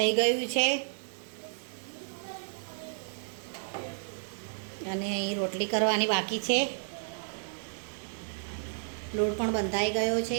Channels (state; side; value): silent; left; digital silence